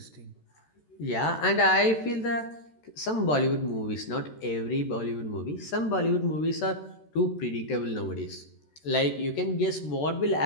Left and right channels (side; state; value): right; late; 13 ms